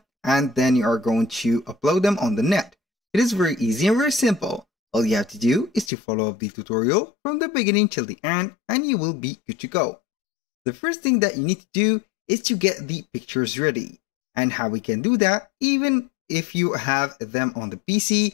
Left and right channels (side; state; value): right; drops out; at 5.9 s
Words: and then you are going to upload them on the net. It is very easy and very simple. All you have to do is to follow the tutorial from the beginning till the end and you will be good to go. The first thing that you need to do is to get the pictures ready. And how we can do that, even if you have them on the PC,